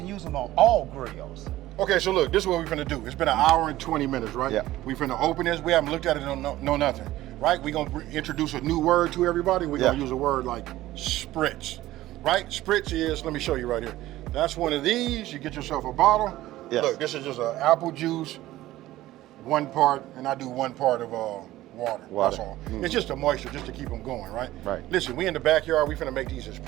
use them on all grills. Okay, so look, this is what we're finna do. It's been 1 hour and 20 minutes, right? Yeah. We finna open this. We haven't looked at it, no nothing, right? We're gonna introduce a new word to everybody. We're gonna use a word like spritz, right? Spritz is, let me show you right here. That's one of these. You get yourself a bottle. Yes. Look, this is just an apple juice, 1 part, and I do 1 part of water. That's all. It's just the moisture, just to keep them going, right? Right. Listen, we in the backyard. We finna make these as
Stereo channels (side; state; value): left; quieter; 15.8 dB